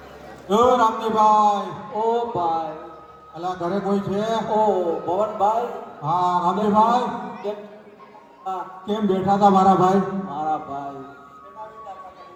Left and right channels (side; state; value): both; identical; correlation 1.00